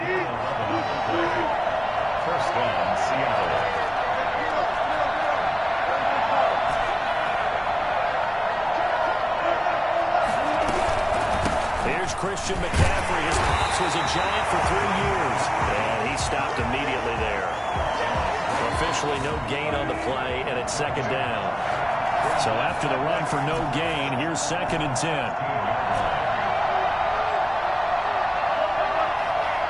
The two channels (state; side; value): identical; both; correlation 1.00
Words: First down, Seattle. Here's Christian McCaffrey. His pops was a Giant for 3 years. And he stopped immediately there. Officially no gain on the play, and it's second down. So after the run for no gain, here's 2nd and 10.